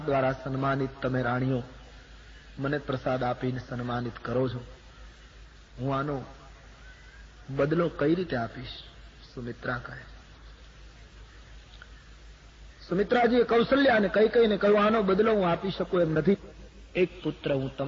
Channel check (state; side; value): identical; both; correlation 1.00